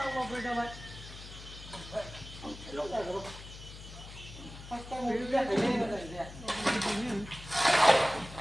mau beda mat. Lo enggak tahu. Pasti mau beda ini ada dia.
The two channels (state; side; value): noise; left; hum, 14 dB below the sound